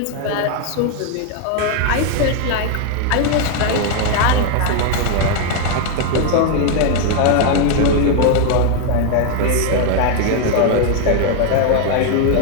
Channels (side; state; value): both; different; correlation 0.00